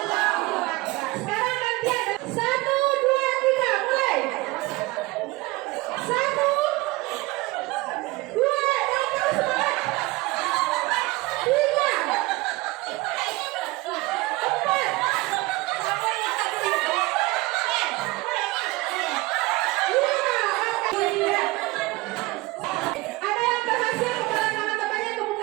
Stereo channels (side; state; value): left; quieter; 21.4 dB